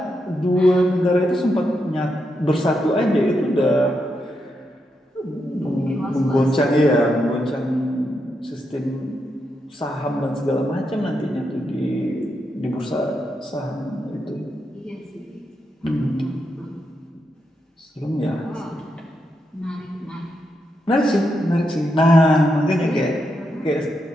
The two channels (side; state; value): both; normal; correlation 0.83